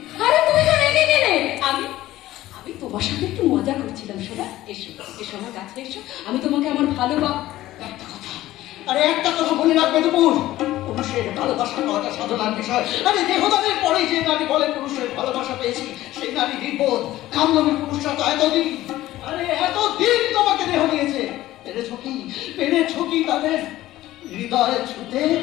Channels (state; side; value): quieter; right; 15.5 dB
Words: আরে তুমি তো রেগে গেলে। আমি তোমার সাথে একটু মজা করছিলাম। শোনা, এসো এসো আমার কাছে এসো, আমি তোমাকে আমার একটা কথা, আরে একটা কথা মনে রাখবে তো, পুরুষের ভালোবাসা পাওয়াটা সাধনার বিষয়। আরে দেহদানের পরে যে নারী বলে পুরুষের ভালোবাসা পেয়েছি, সেই নারী নির্বোধ। কামলবী পুরুষরা তো এতদিন, আরে এতদিন তোমাকে দেহ দিয়েছে। পেরেছো কি তাদের হৃদয়ে ছুতে?